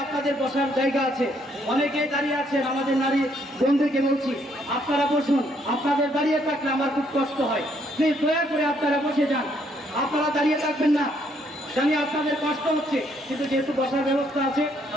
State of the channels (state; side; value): normal; both; correlation 0.70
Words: আপনাদের বসার জায়গা আছে, অনেকে দাঁড়িয়ে আছেন। আমাদের নারী বন্ধুকে বলছি, আপনারা বসুন। আপনাদের দাঁড়িয়ে থাকলে আমার খুব কষ্ট হয়, প্লিজ দয়া করে আপনারা বসে যান। আপনারা দাঁড়িয়ে থাকবেন না, জানি আপনাদের কষ্ট হচ্ছে, কিন্তু যেহেতু বসার ব্যবস্থা আছে